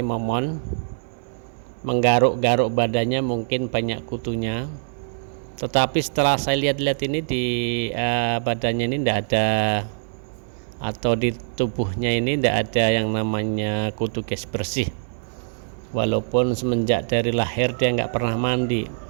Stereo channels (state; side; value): silent; left; digital silence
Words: menggaruk-garuk badannya, mungkin banyak kutunya. Tetapi setelah saya lihat-lihat ini di badannya ini tidak ada, atau di tubuhnya ini tidak ada yang namanya kutu guys, bersih. Walaupun semenjak dari lahir dia nggak pernah mandi.